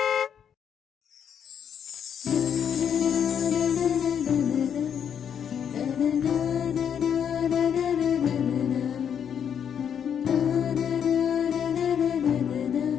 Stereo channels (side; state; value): right; quieter; 8.2 dB